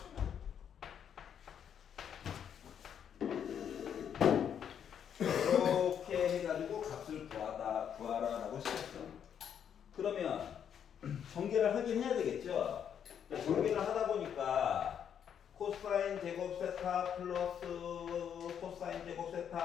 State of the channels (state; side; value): quieter; right; 8.5 dB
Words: 이렇게 해가지고 값을 구하라라고 시켰어. 그러면 전개를 하긴 해야 되겠죠. 전개를 하다 보니까 코사인 제곱 세타 플러스 코사인 제곱